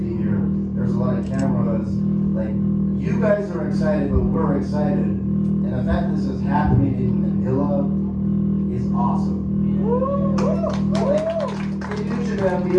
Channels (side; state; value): both; identical; correlation 1.00